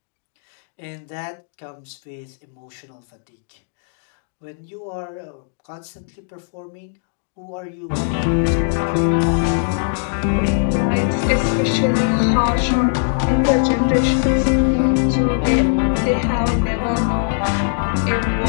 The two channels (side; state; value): right; silent; digital silence